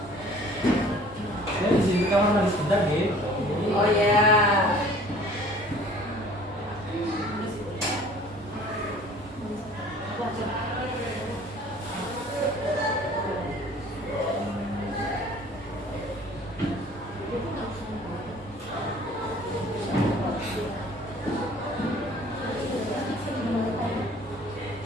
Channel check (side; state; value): both; normal; correlation 0.50